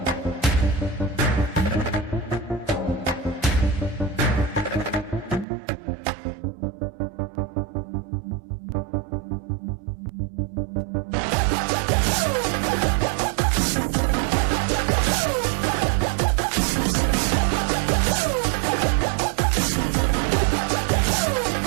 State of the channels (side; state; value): left; drops out; at 5.5 s